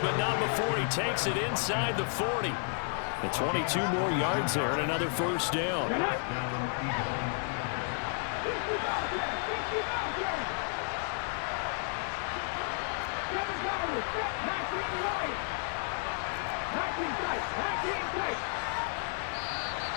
not before he takes it inside the 40. The 22 more yards there and another 1st down. tight. 19 tight.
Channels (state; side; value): silent; right; 56 dB below the other